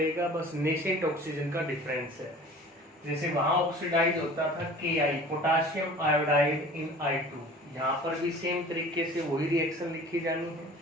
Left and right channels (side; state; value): both; normal; correlation 0.44